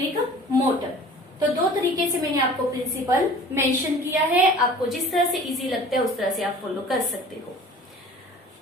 motor. तो दो तरीके से मैंने आपको principal mention किया है। आपको जिस तरह से इजी लगता है उस तरह से आप फॉलो कर सकते हो।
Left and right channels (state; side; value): normal; both; correlation 0.45